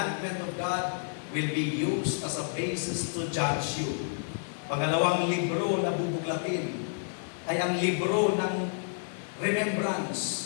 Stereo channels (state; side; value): silent; right; 58 dB below the other